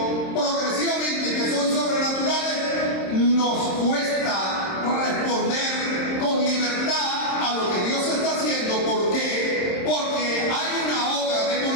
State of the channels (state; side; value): late; right; 26 ms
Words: progresivamente y que son sobrenaturales, nos cuesta responder con libertad a lo que Dios está haciendo. ¿Por qué? Porque hay una obra